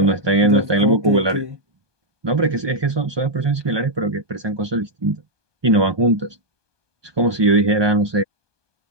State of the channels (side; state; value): left; late; 1.2 ms